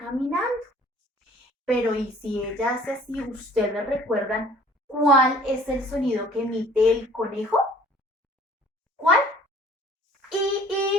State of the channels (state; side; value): normal; both; correlation 0.52